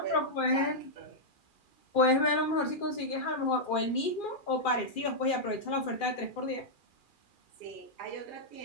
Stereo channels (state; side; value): late; right; 2.4 ms